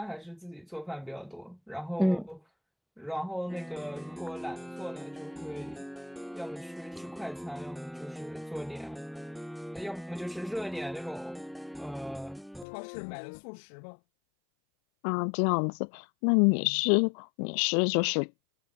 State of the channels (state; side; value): drops out; right; at 12.7 s